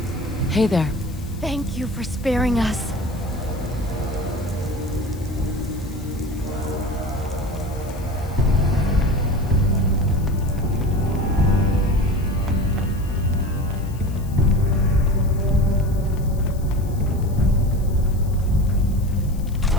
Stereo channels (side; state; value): left; noise; hiss, 22 dB below the sound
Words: Hey there. Thank you for sparing us.